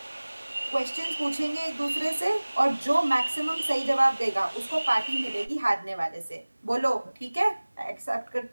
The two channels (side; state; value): both; inverted; correlation -1.00